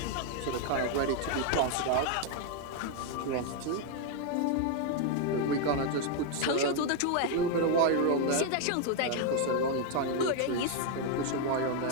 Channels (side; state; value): both; different; correlation 0.01